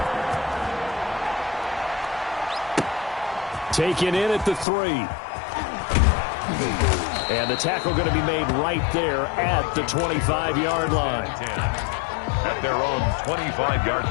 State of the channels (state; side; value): drops out; right; at 4.7 s